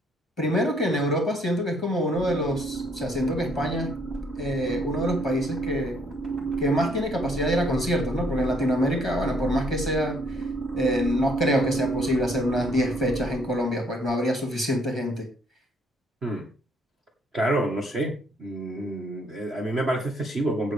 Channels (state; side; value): normal; both; correlation 0.66